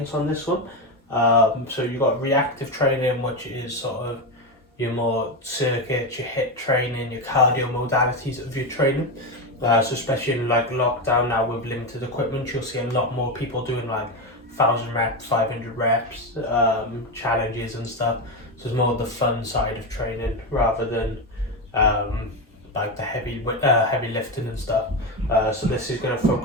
on this one. So you've got reactive training, which is sort of your more circuits, your hit training, your cardio modalities of your training. So especially in like lockdown now with limited equipment, you'll see a lot more people doing like 1,000 reps, 500 reps, challenges and stuff. So it's more the fun side of training rather than um, like the heavy lifting and stuff. So this is going to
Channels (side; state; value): both; normal; correlation 0.13